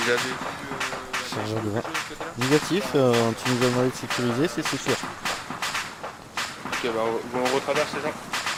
avez vu Serveur de de vin. côté-là? Négatif, tu nous as demandé de sécuriser, c'est sûr. Ok, bah on retraverse les gens.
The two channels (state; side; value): identical; both; correlation 1.00